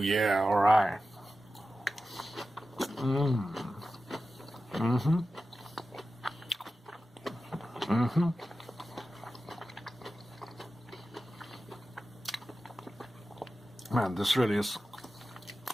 alright. Man, this really is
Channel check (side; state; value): both; normal; correlation 0.94